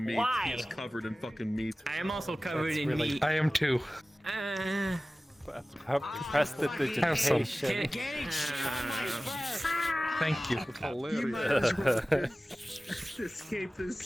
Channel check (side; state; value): both; normal; correlation 0.97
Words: meat. Why? He is covered in fucking meat. I am also covered in meat. I am too. Press the digitation. Getting shot my first. Thank you. Hilarious. You might as well escape this